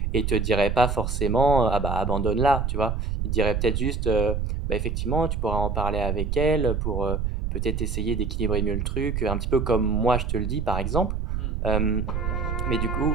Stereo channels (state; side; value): noise; right; rumble, 1 dB below the sound